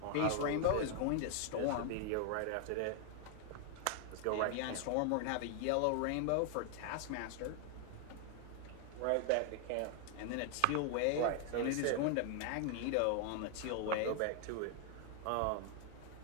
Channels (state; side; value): different; both; correlation 0.00